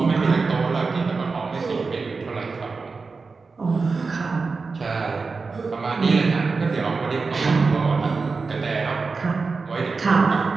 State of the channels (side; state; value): left; quieter; 4.4 dB